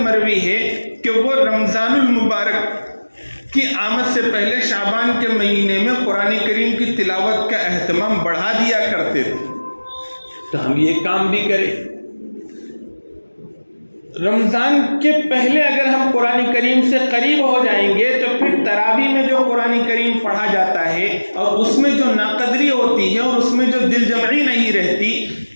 مروی ہے کہ وہ رمضان المبارک کی آمد سے پہلے شعبان کے مہینے میں قرآن کریم کی تلاوت کا اہتمام بڑھا دیا کرتے تھے. تو ہم یہ کام بھی کریں. رمضان کے پہلے اگر ہم قرآن کریم سے قریب ہو جائیں گے تو پھر تراویح میں جو قرآن کریم پڑھا جاتا ہے اور اس میں جو ناقدری ہوتی ہے اور اس میں جو دل جمعی نہیں رہتی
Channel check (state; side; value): inverted; both; correlation -1.00